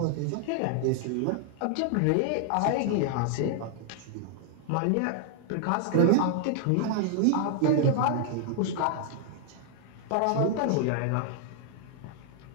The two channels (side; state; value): both; different; correlation 0.00